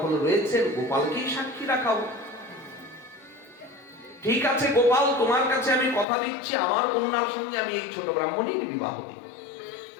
রয়েছেন, গোপালকেই সাক্ষী রাখাবো। ঠিক আছে গোপাল, তোমার কাছে আমি কথা দিচ্ছি, আমার কন্যার সঙ্গে আমি এই ছোট ব্রাহ্মণের বিবাহ দেব।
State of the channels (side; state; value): right; drops out; at 6.1 s